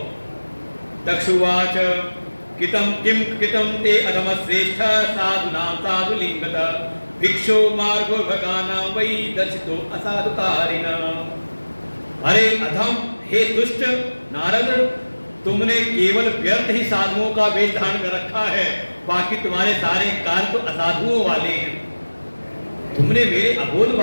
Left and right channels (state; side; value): inverted; both; correlation -1.00